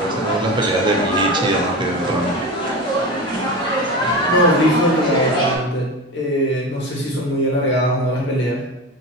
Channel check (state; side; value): normal; both; correlation 0.26